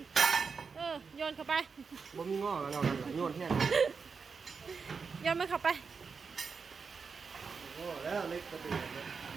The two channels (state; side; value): quieter; left; 5.3 dB